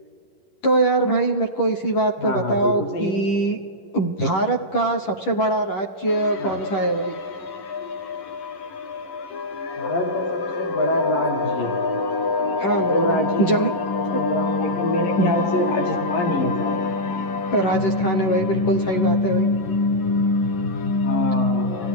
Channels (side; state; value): right; late; 10 ms